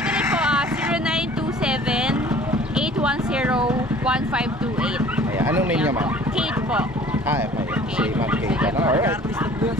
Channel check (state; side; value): normal; both; correlation 0.50